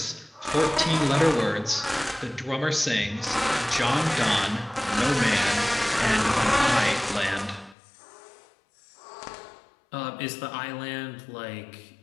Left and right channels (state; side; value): drops out; right; at 7.8 s